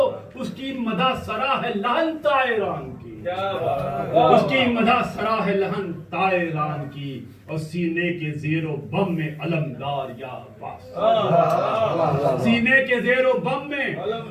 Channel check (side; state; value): both; identical; correlation 1.00